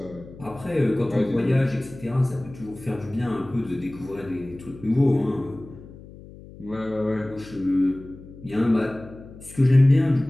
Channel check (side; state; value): left; noise; hum, 18 dB below the sound